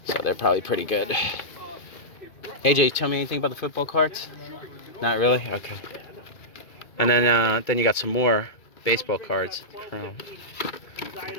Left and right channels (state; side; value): late; right; 2.3 ms